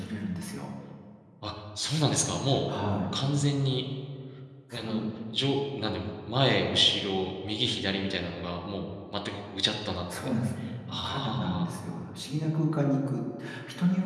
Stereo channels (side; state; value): both; identical; correlation 1.00